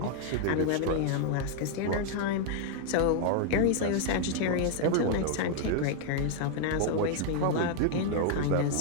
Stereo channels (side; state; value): both; different; correlation 0.00